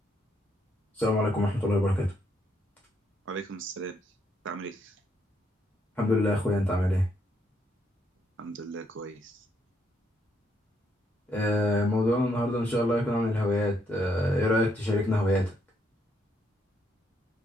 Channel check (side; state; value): both; normal; correlation 0.74